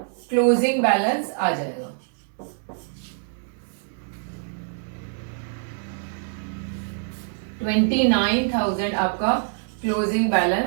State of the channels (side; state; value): left; silent; digital silence